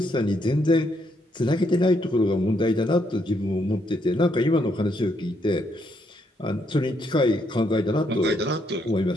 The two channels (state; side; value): normal; both; correlation 0.75